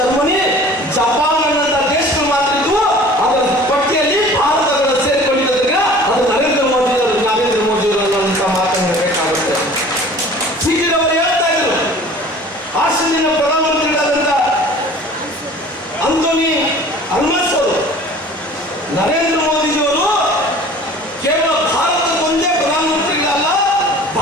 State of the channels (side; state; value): both; normal; correlation 0.46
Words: Japan ಅನ್ನಂತ ದೇಶಗಳು ಮಾತ್ರ ಇದ್ವು. ಅದರ ಪಟ್ಟಿಯಲ್ಲಿ ಭಾರತಗಳು ಸೇರಿಕೊಂಡಿದ್ದರಿಂದ ಅದು ನರೇಂದ್ರ ಮೋದಿಯವರು ಅನ್ನುವಂತ ಮಾತನ್ನು ಹೇಳಬೇಕಾಗುತ್ತೆ. ಸಿಕ್ಕಿದವರು ಹೇಳ್ತಾ ಇದ್ರು, ಆಸ್ಟ್ರೇಲಿಯಾ ಪ್ರಧಾನಮಂತ್ರಿಗಳಾದಂತ ಅಂಥೋನಿ ಅಲ್ಬನೀಸ್ ಅವರು ನರೇಂದ್ರ ಮೋದಿಜಿಯವರು ಕೇವಲ ಭಾರತಕ್ಕೊಂದೇ ಪ್ರಧಾನಮಂತ್ರಿಗಳಲ್ಲ,